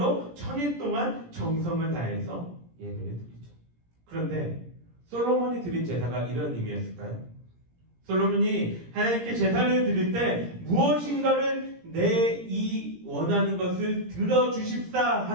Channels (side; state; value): left; late; 17 ms